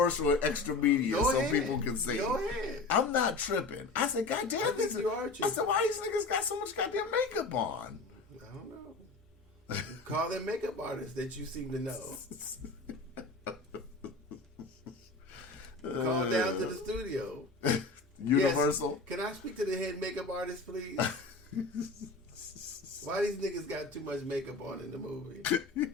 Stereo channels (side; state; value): right; quieter; 3.5 dB